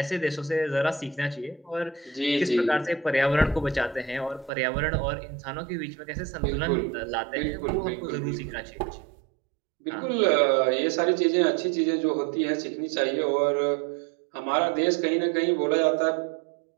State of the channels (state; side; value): drops out; left; at 4.5 s